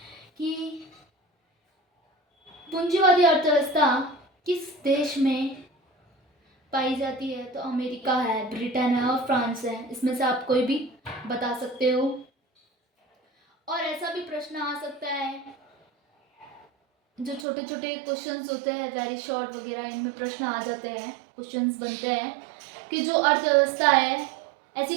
कि पूंजीवादी अर्थव्यवस्था किस देश में पाई जाती है, तो अमेरिका है, ब्रिटेन है और फ्रांस है। इसमें से आप कोई भी बता सकते हो। और ऐसा भी प्रश्न आ सकता है, जो छोटे छोटे क्वेश्चंस होते हैं वेरी शॉर्ट वगैरह, इनमें प्रश्न आ जाते हैं, क्वेश्चंस बनते हैं कि जो अर्थव्यवस्था है, ऐसी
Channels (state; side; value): drops out; left; at 17.4 s